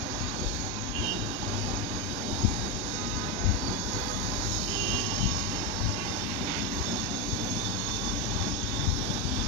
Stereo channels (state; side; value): normal; both; correlation 0.10